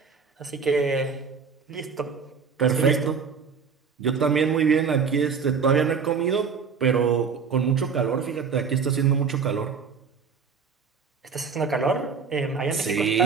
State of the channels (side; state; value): left; quieter; 5.9 dB